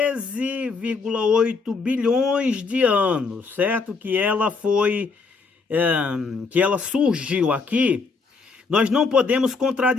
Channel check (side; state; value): right; quieter; 4.5 dB